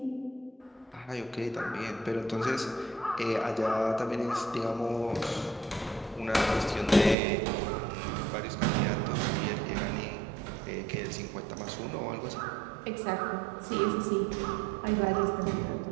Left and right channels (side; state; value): left; drops out; at 7.2 s